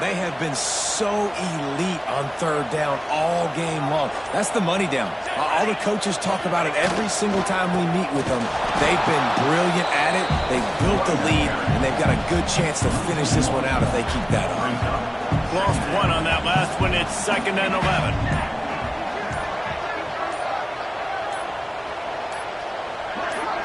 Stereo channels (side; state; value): both; identical; correlation 1.00